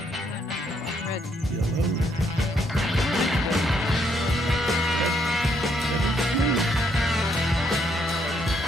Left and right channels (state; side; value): normal; both; correlation 0.73